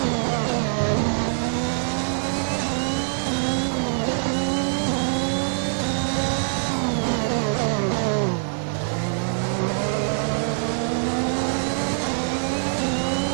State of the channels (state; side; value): silent; left; digital silence